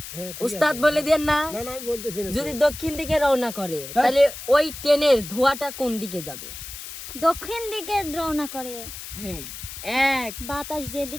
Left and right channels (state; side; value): noise; left; hiss, 11 dB below the sound